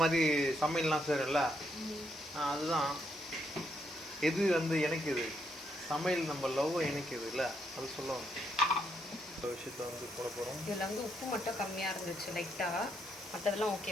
மாதிரி சமையல்லாம் செய்கிறல்ல, அதுதான் எது வந்து எனக்கு இது சமையல் நம்ம லவ் இணைக்குது இல்லை அது சொல்லுவாங்க. இந்த விஷயத்தை வந்து போட போகிறோம். இதில் வந்து உப்பு மட்டும் கம்மியாக இருந்துச்சு லைட்டாக, மற்றதெல்லாம்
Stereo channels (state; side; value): normal; both; correlation 0.77